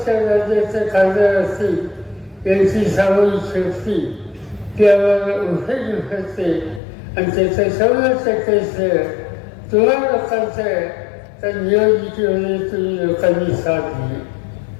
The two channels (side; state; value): right; drops out; at 6.8 s